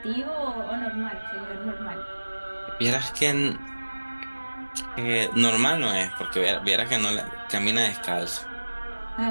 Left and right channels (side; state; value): both; inverted; correlation -1.00